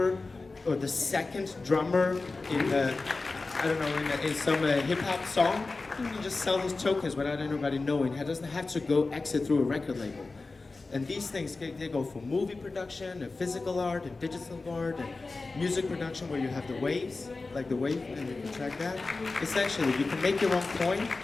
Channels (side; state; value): right; quieter; 3.7 dB